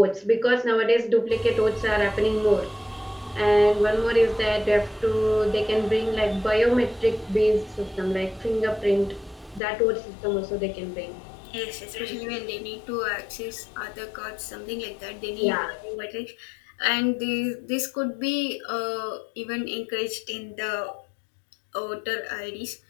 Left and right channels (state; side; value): drops out; right; at 9.6 s